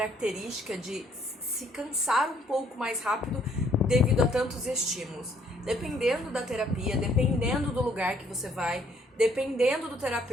de se cansar um pouco mais rápido devido a tantos estímulos. Dependendo da terapia, dependendo do lugar que você vai, dependendo do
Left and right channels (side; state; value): both; normal; correlation 0.65